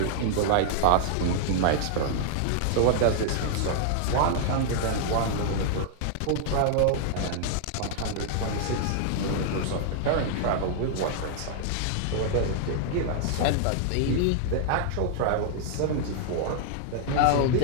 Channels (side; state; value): both; different; correlation 0.00